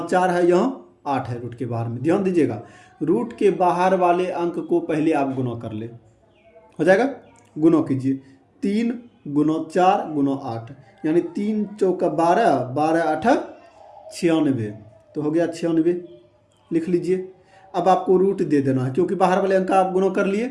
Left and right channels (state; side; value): identical; both; correlation 1.00